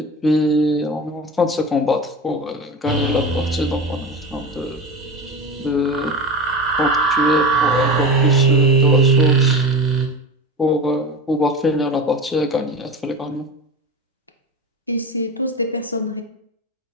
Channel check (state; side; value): normal; both; correlation 0.27